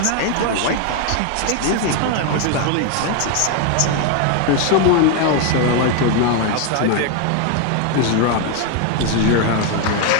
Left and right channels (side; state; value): both; different; correlation 0.01